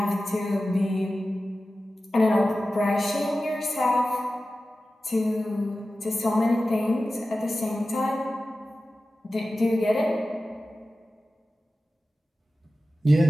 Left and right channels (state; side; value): normal; both; correlation 0.95